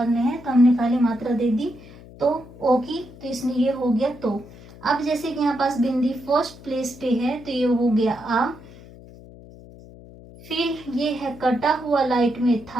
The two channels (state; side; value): noise; left; hum, 19 dB below the sound